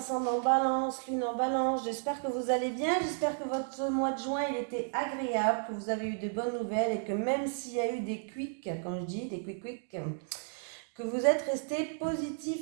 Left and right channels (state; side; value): silent; left; digital silence